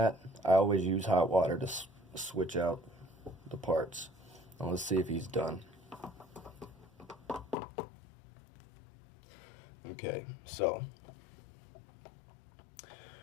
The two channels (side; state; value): right; drops out; at 7.6 s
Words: I always use hot water to switch out the parts. Now let's see if he's done. Okay, so